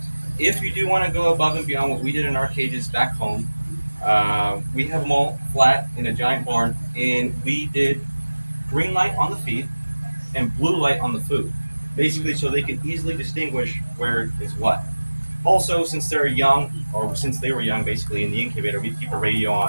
If you do want to go above and beyond what we did in our cages back home, we have them all flat in a giant barn, and we did green light on the feed and blue light on the food, basically so they can easily distinguish where is what. Also, since they're young, or since they were young, basically in the incubator, we keep a radio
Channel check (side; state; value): both; inverted; correlation -1.00